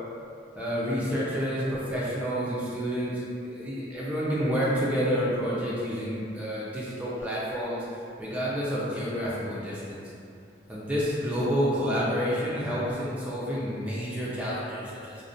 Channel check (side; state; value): both; normal; correlation 0.53